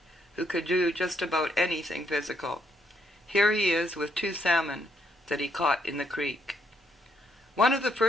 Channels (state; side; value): normal; both; correlation 0.74